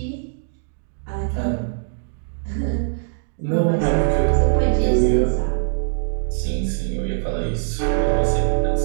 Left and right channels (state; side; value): silent; left; digital silence